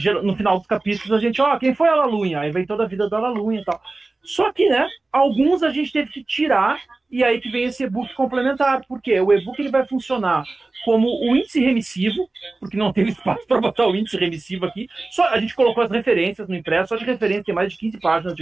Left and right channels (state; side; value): quieter; left; 3.3 dB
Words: capítulos, a gente, quem foi a Lalunha? Aí vem toda a vida da Lalunha e tal. Só que, né, alguns a gente teve que tirar, e aí que vem esse e-book complementar. Por quê? O e-book ele vai funcionar como o índice remissivo, porque não teve espaço para botar o índice remissivo aqui. Só a gente colocou as referências no impresso, só de referência, tem mais de 15 páginas de